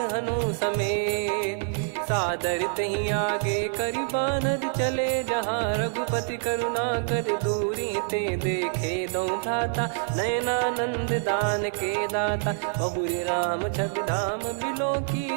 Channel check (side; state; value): left; silent; 59 dB below the other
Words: हनु समेत, सादर तही आगे करि बानर चले, जहाँ रघुपति करुणा कर दूरी ते देखे दो भ्राता, नयनानंद दान के दाता, बहुरी राम छवि धाम बिलो की,